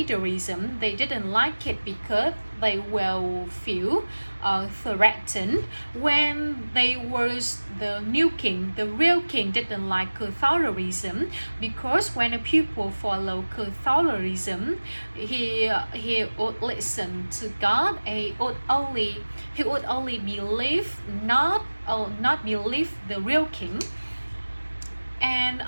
They didn't like it because they will feel threatened when they was the new king. The real king didn't like Catholicism because when the people follow Catholicism, he would listen to God. He would only believe not believe the real king. And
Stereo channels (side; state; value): both; inverted; correlation -1.00